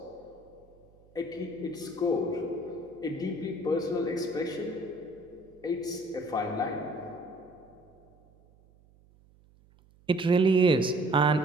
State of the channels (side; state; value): right; noise; hum, 29 dB below the sound